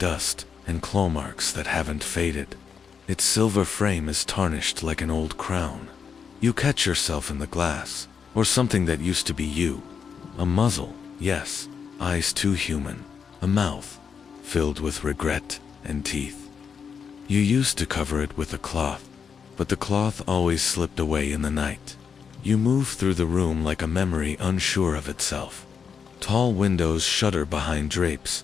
and claw marks that haven't faded. Its silver frame is tarnished like an old crown. You catch yourself in the glass, or something that used to be you. A muzzle, yes, eyes too human, a mouth filled with regret and teeth. You used to cover it with a cloth, but the cloth always slipped away in the night. You move through the room like a memory unsure of itself. Tall windows shudder behind drapes,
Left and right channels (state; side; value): quieter; right; 6.5 dB